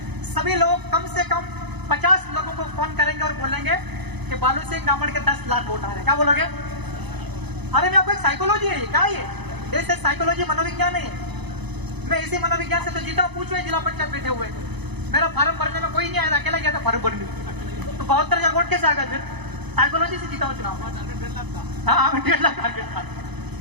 सभी लोग कम से कम 50 लोगों को फोन करेंगे और बोलेंगे कि बालू सिंह गमड़ के 10 लाख वोट आ रहे हैं। क्या बोलोगे? अरे मैं आपको एक साइकोलॉजी है, क्या ये देश है, साइकोलॉजी मनोविज्ञान है। मैं इसी मनोविज्ञान से तो जीता हूँ। पूछो जिला पंचायत बैठे हुए, मेरा फार्म भरने में कोई नहीं आया था, अकेला गया था फार्म भरने। तो 72,000 वोट कैसे आ गए? फिर साइकोलॉजी से जीता हूँ चुनाव। हाँ, 1.5 लाख टारगेट था,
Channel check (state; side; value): late; left; 0.99 ms